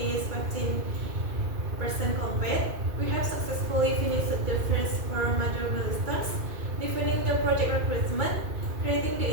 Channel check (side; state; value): left; late; 2.4 ms